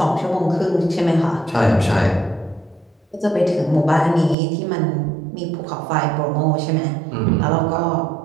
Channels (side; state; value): left; drops out; at 4.4 s